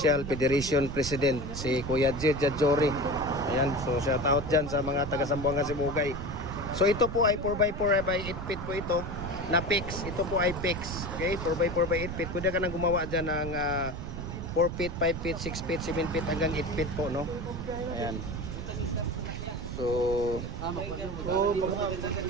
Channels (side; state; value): right; noise; rumble, 7 dB below the sound